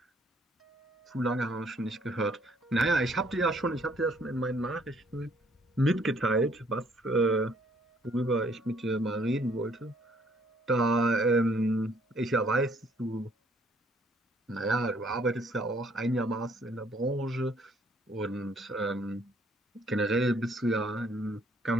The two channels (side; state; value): both; normal; correlation 0.64